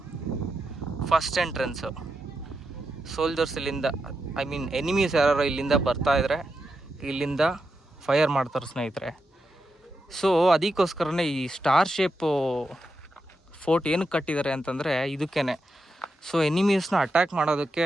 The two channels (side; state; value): both; normal; correlation 0.86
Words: ಫಸ್ಟ್ ಎಂಟ್ರೆನ್ಸು. ಸೋಲ್ಜರ್ಸ್ ಇಲ್ಲಿಂದ, ಐ ಮೀನ್ ಎನಿಮೀಸ್ ಯಾರು ಇಲ್ಲಿಂದ ಬರ್ತಾಯಿದ್ರೆ ಇಲ್ಲಿಂದ ಫೈರ್ ಮಾಡ್ತಾರೆ ಸ್ನೇಹಿತರೆ. ಸೊ ಅದಕ್ಕೋಸ್ಕರನೇ ಈ ಸ್ಟಾರ್ ಶೇಪು ಫೋರ್ಟ್ ಏನಕ್ಕೆ ಕಟ್ಟಿದ್ದಾರೆ ಅಂತಂದರೆ ಇದಕ್ಕೇ. ಸೊ ಎನಿಮೀಸ್ನ ಅಟ್ಯಾಕ್ ಮಾಡೋದಕ್ಕೆ,